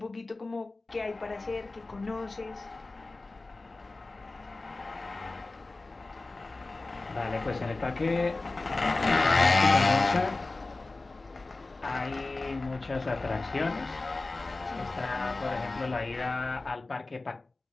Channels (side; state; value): right; quieter; 3.3 dB